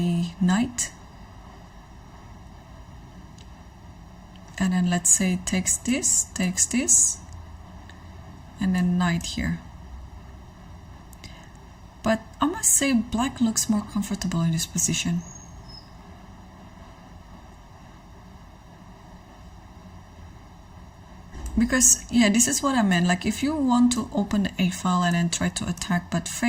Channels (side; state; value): both; identical; correlation 1.00